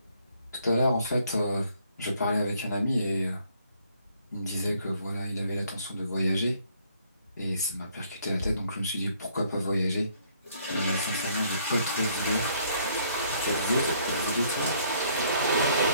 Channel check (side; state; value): both; inverted; correlation -0.65